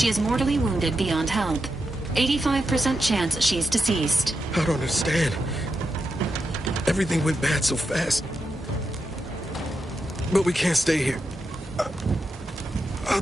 is mortally wounded beyond help. 85% chance she's deceased. I don't understand. Everything went bad so fast. But we can't stay here.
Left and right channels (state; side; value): normal; both; correlation 0.86